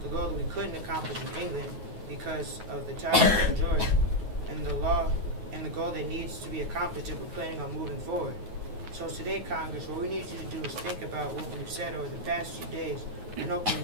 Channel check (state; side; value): late; left; 9.4 ms